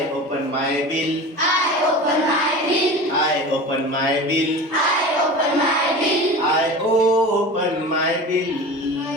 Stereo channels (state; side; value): normal; both; correlation 0.34